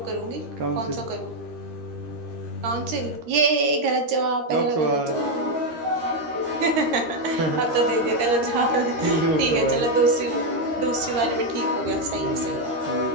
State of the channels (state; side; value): late; left; 13 ms